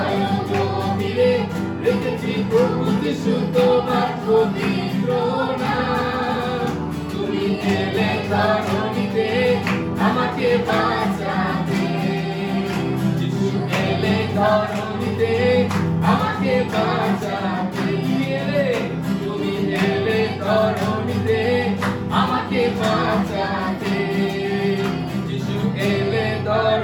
গভীরে দেখেছি প্রভু যিশু তোমার পবিত্র নাম। তুমি এলে ধরণীতে আমাকে বাঁচাতে। যিশু এলে ধরণীতে আমাকে বাঁচাতে। তুমি এলে ধরণীতে আমাকে বাঁচাতে। যিশু এলে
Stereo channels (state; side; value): identical; both; correlation 1.00